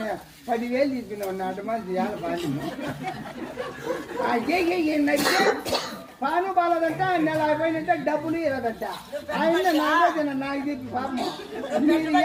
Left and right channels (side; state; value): both; identical; correlation 1.00